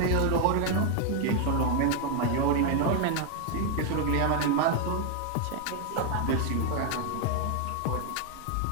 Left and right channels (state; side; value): different; both; correlation 0.00